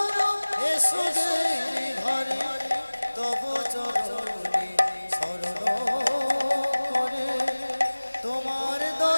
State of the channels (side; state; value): both; inverted; correlation -1.00